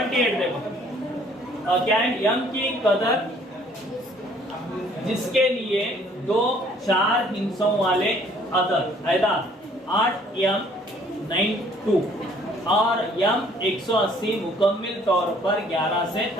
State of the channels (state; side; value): normal; both; correlation 0.59